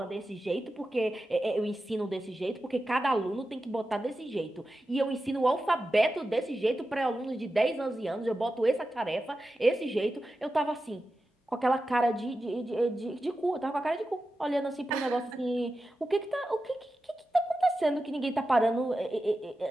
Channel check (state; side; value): normal; both; correlation 0.92